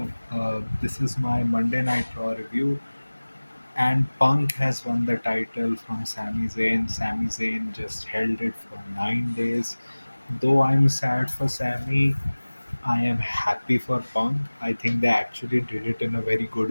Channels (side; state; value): both; inverted; correlation -1.00